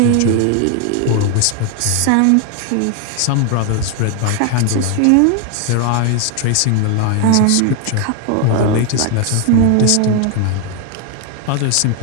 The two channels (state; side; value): different; both; correlation 0.01